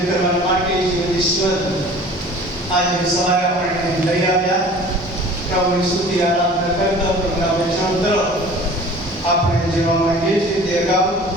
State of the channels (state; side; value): normal; both; correlation 0.45